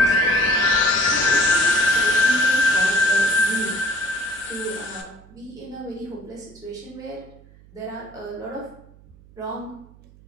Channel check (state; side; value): noise; right; hum, 25 dB below the sound